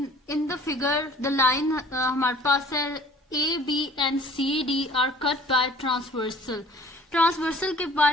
in the figure the line हमारे पास है A B and C D are cut by transversal. Transversal के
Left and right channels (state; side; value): normal; both; correlation 0.50